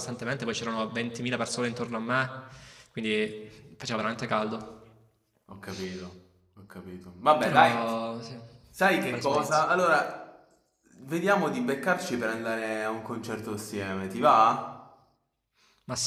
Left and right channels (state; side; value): identical; both; correlation 1.00